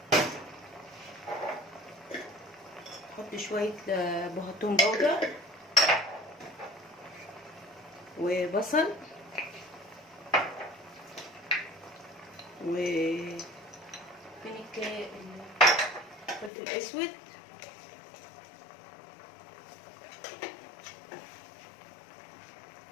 احط شويه بهتون بودر وبصل وفين الفلفل الاسود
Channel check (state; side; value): drops out; right; at 16.5 s